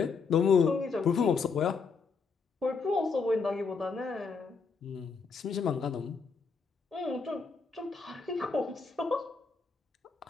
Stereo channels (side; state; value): right; quieter; 5.0 dB